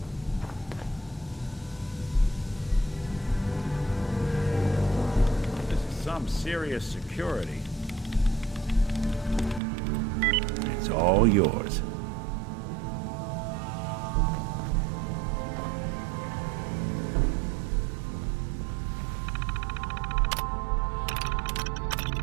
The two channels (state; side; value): drops out; left; at 9.6 s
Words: This is some serious security. It's all yours.